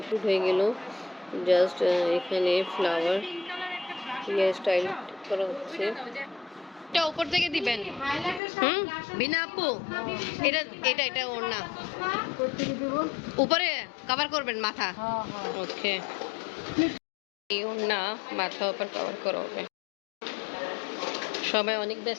হয়ে গেল। জাস্ট এখানে ফ্লাওয়ার হেয়ার স্টাইল করা হচ্ছে। এটা উপর থেকে দিবেন। বিনা আপু, এটা এটা এটা ওর না, উপরে কভার করবেন মাথা। ওকে, এই ওর না, মাথা উপর কভার করা হবে। সবাই অনেক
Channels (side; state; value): right; drops out; at 8.4 s